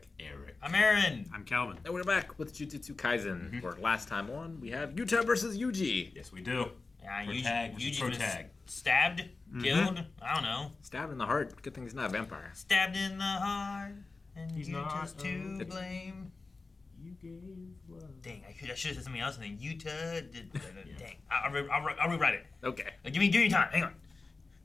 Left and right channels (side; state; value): right; quieter; 3.8 dB